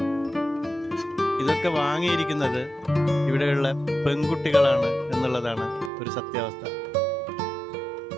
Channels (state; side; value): drops out; left; at 5.9 s